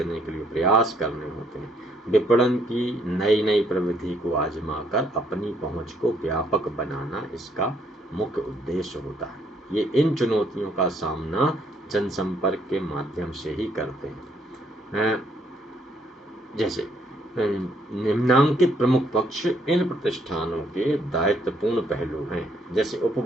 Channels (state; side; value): normal; both; correlation 0.69